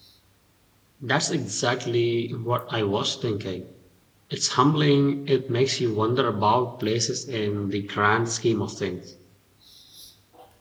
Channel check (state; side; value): identical; both; correlation 1.00